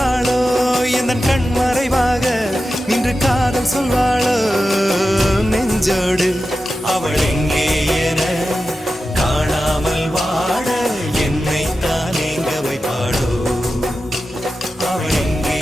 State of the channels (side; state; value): both; normal; correlation 0.92